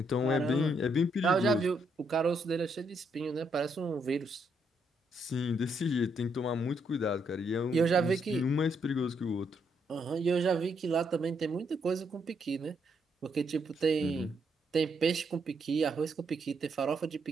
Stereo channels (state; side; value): normal; both; correlation 0.75